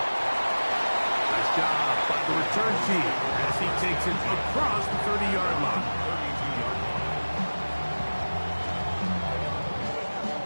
Nice job by the return team as he takes it across the 30-yard line.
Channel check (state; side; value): inverted; both; correlation -1.00